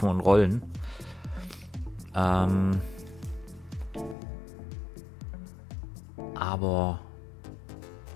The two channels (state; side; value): drops out; right; at 4.2 s